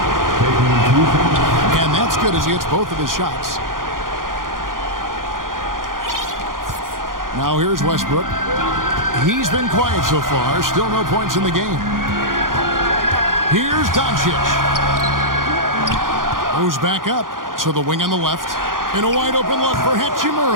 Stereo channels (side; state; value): left; late; 0.90 ms